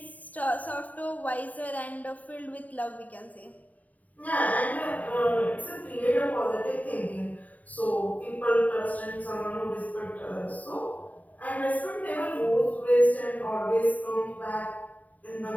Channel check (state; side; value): late; right; 0.073 ms